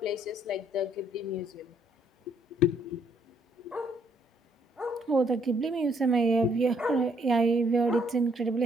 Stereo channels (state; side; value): normal; both; correlation 0.68